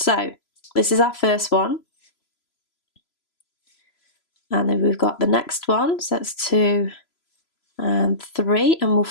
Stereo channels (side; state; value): right; late; 3.0 ms